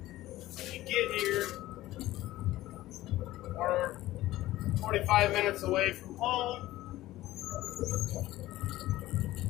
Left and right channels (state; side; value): quieter; right; 16.1 dB